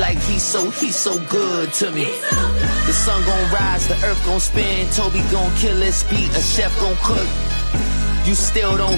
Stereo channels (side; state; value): both; inverted; correlation -1.00